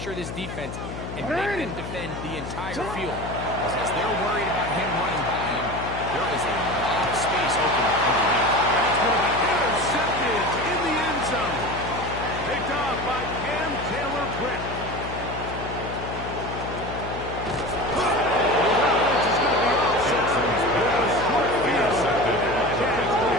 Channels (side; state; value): left; noise; hum, 8 dB below the sound